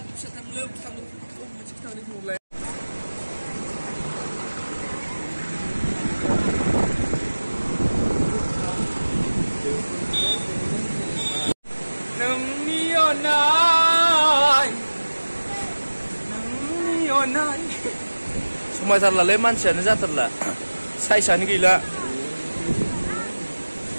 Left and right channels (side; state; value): both; inverted; correlation -1.00